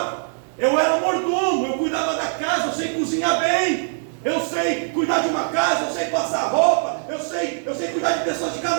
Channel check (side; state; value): left; silent; digital silence